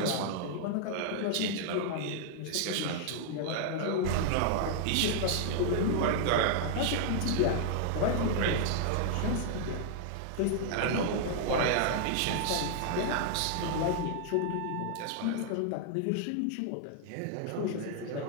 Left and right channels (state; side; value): different; both; correlation -0.01